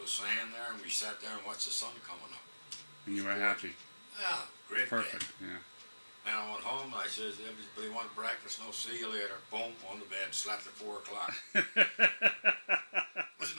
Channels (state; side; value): inverted; both; correlation -1.00